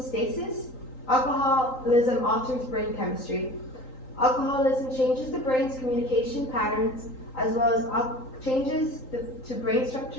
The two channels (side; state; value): right; late; 3.8 ms